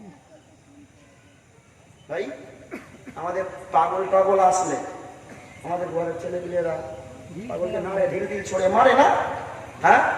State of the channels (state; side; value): identical; both; correlation 1.00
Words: ভাই আমাদের পাগল টাগল আসলে আমাদের ঘরের ছেলেপিলেরা পাগলকে নামে ঢিল ঢিল ছড়ে মারে না? হ্যাঁ,